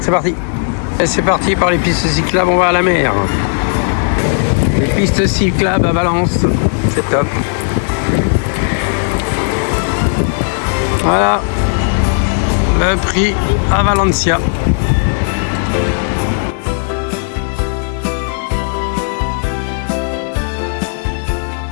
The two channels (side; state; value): right; silent; digital silence